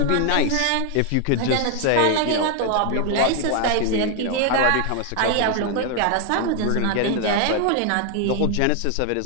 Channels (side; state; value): both; different; correlation 0.01